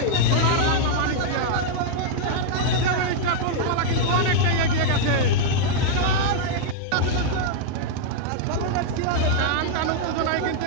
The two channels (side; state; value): both; different; correlation -0.01